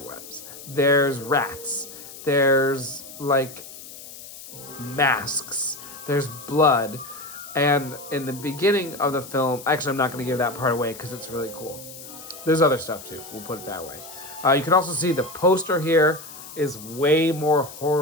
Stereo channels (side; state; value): left; noise; hiss, 15 dB below the sound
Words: webs. There's rats. There's, like, masks. There's blood. And in the beginning of the film, actually, I'm not going to give that part away because it's really cool. There's other stuff, too. We'll put it that way. You can also see the poster here is way more